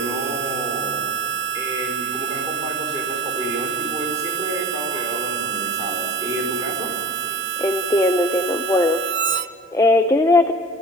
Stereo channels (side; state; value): both; normal; correlation 0.37